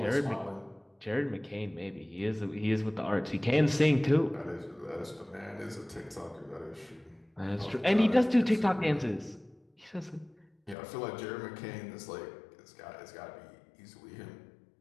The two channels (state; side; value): drops out; right; at 10.8 s